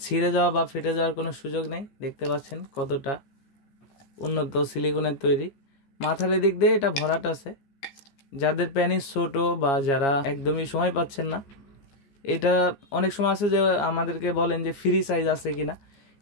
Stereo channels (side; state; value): right; late; 15 ms